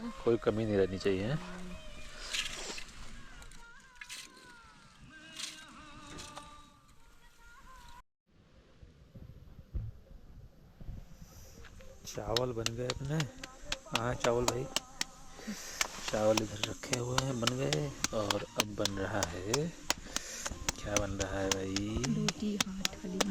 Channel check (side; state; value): both; identical; correlation 1.00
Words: कोई कमी नहीं रहनी चाहिए। चावल बन गए अपने। हाँ चावल भाई, चावल इधर रखे हुए हैं, बन गए। और अब बन रहा है, क्या बन रहा है भाई? रोटी,